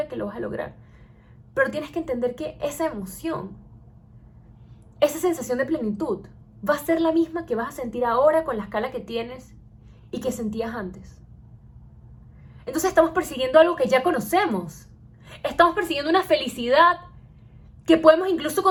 que lo vas a lograr. Pero tienes que entender que esa emoción, esa sensación de plenitud, va a ser la misma que vas a sentir ahora con la escala que tienes y que sentías antes. Entonces estamos persiguiendo algo que ya conocemos. Estamos persiguiendo una felicidad que podemos incluso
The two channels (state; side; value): identical; both; correlation 1.00